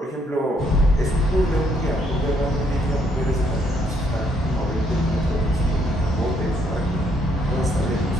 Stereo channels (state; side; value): normal; both; correlation 0.70